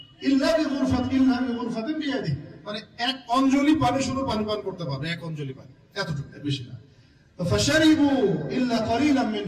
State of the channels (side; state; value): both; identical; correlation 1.00